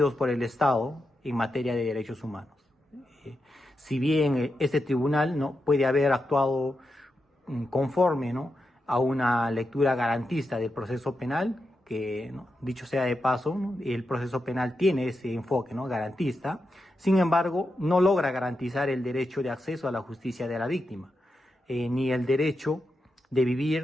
por el Estado en materia de derechos humanos. Si bien este tribunal, ¿no?, puede haber actuado conforme, ¿no?, a una lectura garantista del proceso penal, que, ¿no?, dicho sea de paso, ¿no?, el proceso penal tiene ese enfoque, ¿no?, garantista. Sin embargo, no logra garantizar el derecho de acceso a la justicia de la víctima, ni el derecho de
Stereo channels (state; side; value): normal; both; correlation 0.87